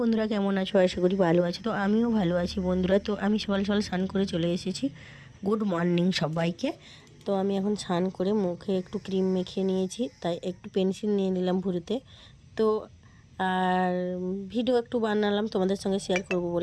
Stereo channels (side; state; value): both; identical; correlation 1.00